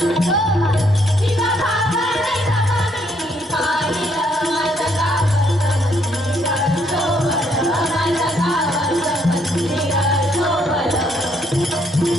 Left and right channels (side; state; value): both; normal; correlation 0.70